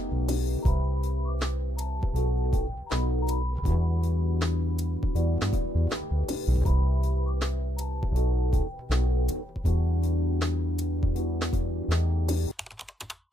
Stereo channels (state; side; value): normal; both; correlation 0.81